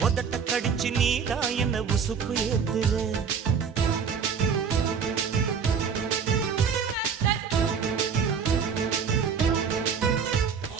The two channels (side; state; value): left; quieter; 6.5 dB